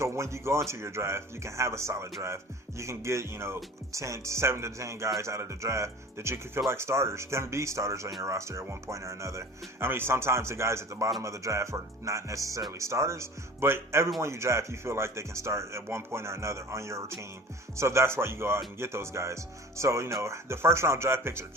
when you go into your draft, you can have a solid draft. You can get 7 to 10 guys out of the draft that you can feel like starters, can be starters on your roster at one point or another. I mean, sometimes the guys at the bottom of the draft are not necessarily starters, but everyone you draft, you feel like they can start at one point or another on your team. So that's why you go out and get those guys. So the first round draft picks are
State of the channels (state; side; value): normal; both; correlation 0.42